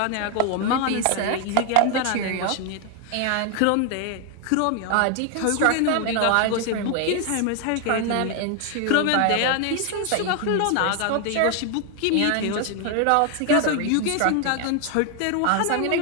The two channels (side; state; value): both; different; correlation 0.01